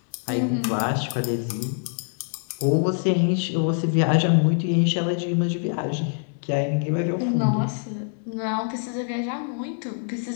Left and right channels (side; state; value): right; silent; 61 dB below the other